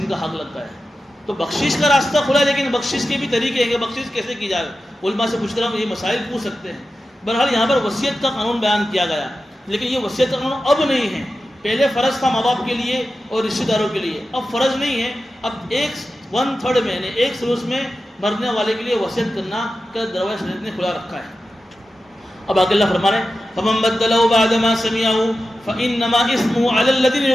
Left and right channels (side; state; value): both; normal; correlation 0.92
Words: کا حق لگتا ہے. تو بخشش کا راستہ کھلا ہے، لیکن بخشش کے بھی طریقے ہیں کہ بخشش کیسے کی جائے. علماء سے پوچھ کر ہم یہ مسائل پوچھ سکتے ہیں. بہرحال یہاں پر وصیت کا قانون بیان کیا گیا، لیکن یہ وصیت کا قانون اب نہیں ہے. پہلے فرض تھا ماں باپ کے لیے اور رشتہ داروں کے لیے، اب فرض نہیں ہے. اب 1/3 میں، یعنی 1/3 میں مرنے والے کے لیے وصیت کرنا کا دروازہ شریعت نے کھلا رکھا ہے. اب آگے اللہ فرما رہے ہیں فَمَن بَدَّلَهُ بَعْدَ مَا سَمِعَهُ فَإِنَّمَا إِثْمُهُ عَلَى الَّذِينَ